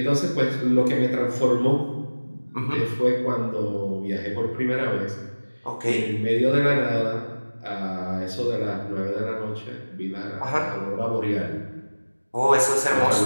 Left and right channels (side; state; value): both; inverted; correlation -1.00